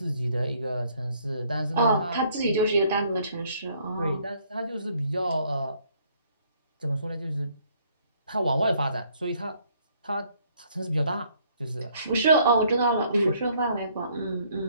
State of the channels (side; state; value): both; inverted; correlation -0.65